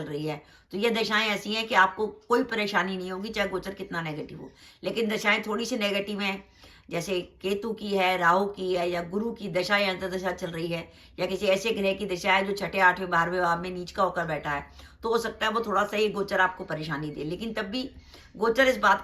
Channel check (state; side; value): identical; both; correlation 1.00